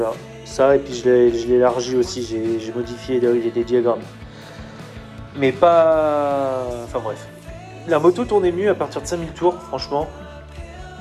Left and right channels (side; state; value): both; identical; correlation 1.00